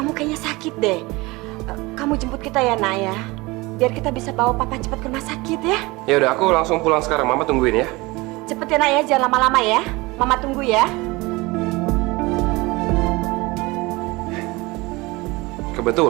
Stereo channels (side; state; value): left; quieter; 22.8 dB